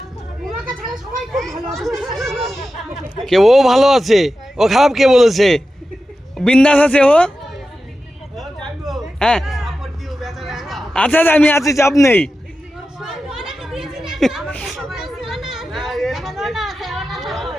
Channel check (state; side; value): normal; both; correlation 0.92